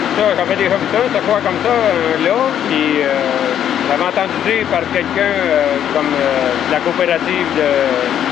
j'avais déjà vu ça, un séchoir comme ça, là. Puis j'avais entendu dire par quelqu'un comme la coopérative de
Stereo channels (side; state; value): right; quieter; 9.9 dB